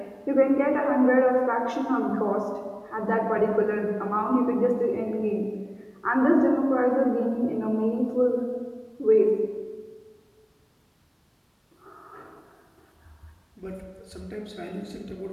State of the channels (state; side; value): identical; both; correlation 1.00